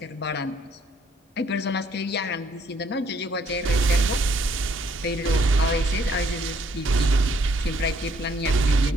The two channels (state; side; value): normal; both; correlation 0.67